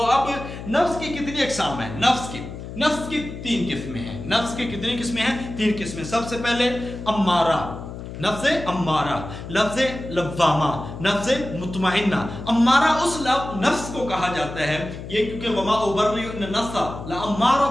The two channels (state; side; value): noise; left; hum, 10 dB below the sound